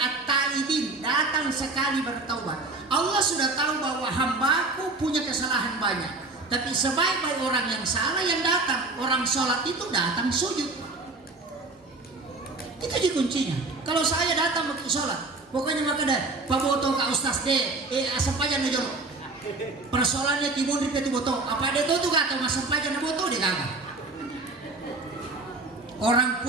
datang sekali bertaubat. Allah sudah tahu bahwa hambaku punya kesalahan banyak. Tapi sebaik-baik orang yang salah yang datang. Orang sholat itu datang sujud. Itu aja kuncinya. Kalau saya datang ke sholat, pokoknya maka dah paboto ka ustaz de, sampajan na jolo. Persoalannya timun di petu boto. Apa dia tuh kata mas sampajan na boto dia kagak. Orang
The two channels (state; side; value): quieter; left; 3.4 dB